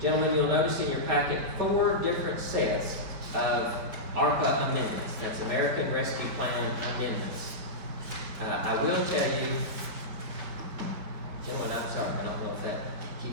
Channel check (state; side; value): late; left; 4.5 ms